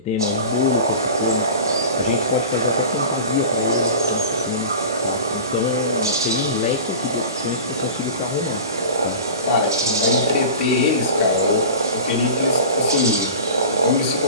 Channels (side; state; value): both; inverted; correlation -0.35